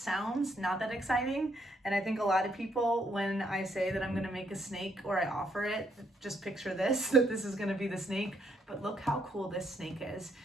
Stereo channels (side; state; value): both; normal; correlation 0.73